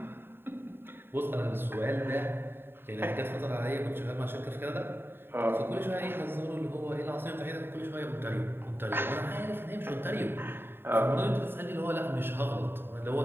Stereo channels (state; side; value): late; left; 0.11 ms